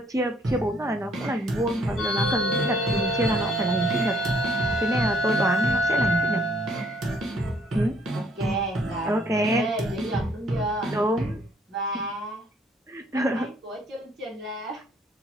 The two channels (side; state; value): both; normal; correlation 0.64